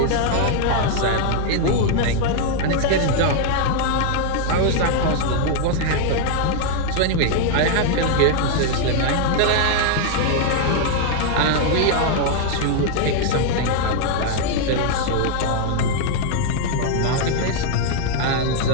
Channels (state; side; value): different; both; correlation 0.00